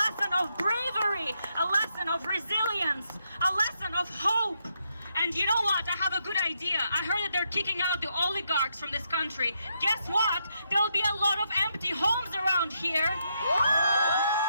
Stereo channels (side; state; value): both; inverted; correlation -0.79